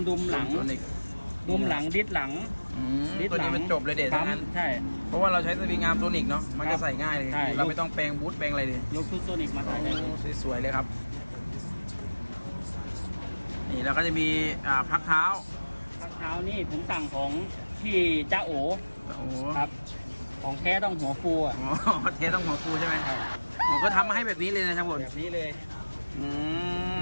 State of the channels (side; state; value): both; inverted; correlation -1.00